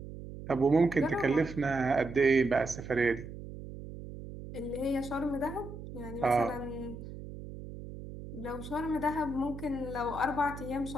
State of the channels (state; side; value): noise; right; hum, 11 dB below the sound